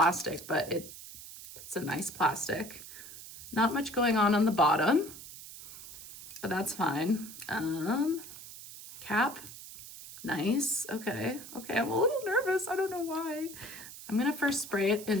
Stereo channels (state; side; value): noise; right; hiss, 14 dB below the sound